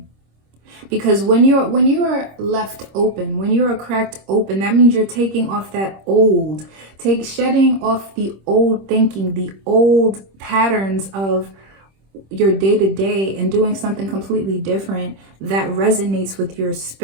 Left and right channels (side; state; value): left; late; 26 ms